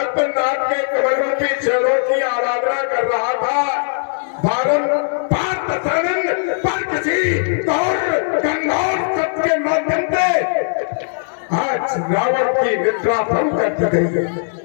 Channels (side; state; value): right; silent; digital silence